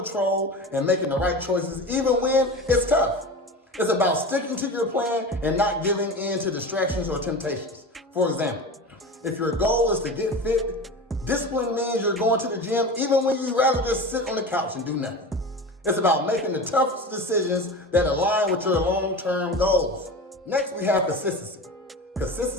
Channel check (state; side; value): normal; both; correlation 0.30